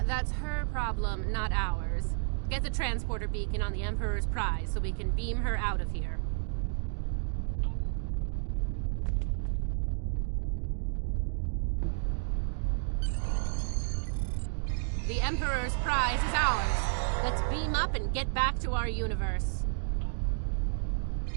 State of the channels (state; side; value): silent; left; digital silence